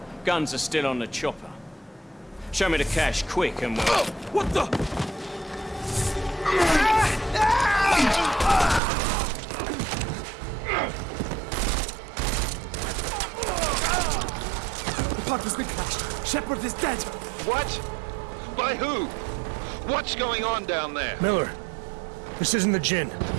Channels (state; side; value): drops out; left; at 8.8 s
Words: Guns are still on the chopper. Show me the cash, quick, and we'll... What the? The park has been crashed. Shepard is dead. What? By who? What's going on down there? Miller, this isn't the Jinn.